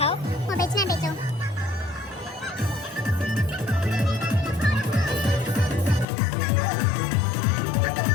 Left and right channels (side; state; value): right; drops out; at 6.1 s